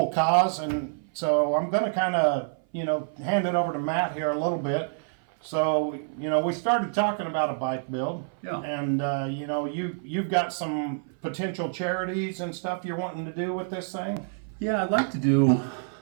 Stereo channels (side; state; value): left; silent; 56 dB below the other